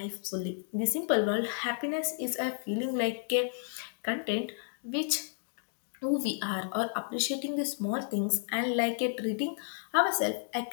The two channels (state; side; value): silent; right; digital silence